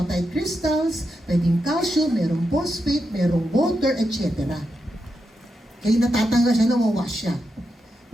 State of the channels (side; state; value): both; normal; correlation 0.86